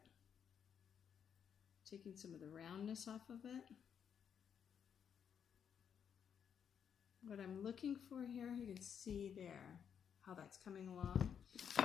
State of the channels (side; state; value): right; quieter; 7.9 dB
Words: Taking some of the roundness off of it. What I'm looking for here, you can see there how that's coming along.